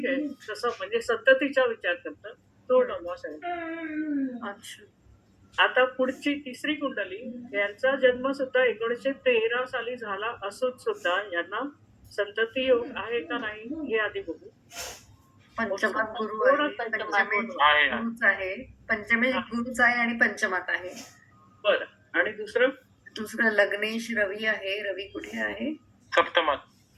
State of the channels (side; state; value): both; identical; correlation 1.00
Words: आहे. तसं म्हणजे संततीचा विचार करता तो नवमास आहे. अच्छा. आता पुढची तिसरी कुंडली, यांचा जन्म सुद्धा 1913 साली झाला असून सुद्धा यांना संतती योग आहे का नाही हे आधी बघू. पंचमात गुरु थोडं आहे, पंचमात पंचमेश गुरु आहे. गुरुच आहे, पंचमेश गुरुच आहे आणि पंचमात आहे. बरं. आणि दुसरं दुसरं लग्नेश रवी आहे. रवी कुठे आहे? सप्तमात.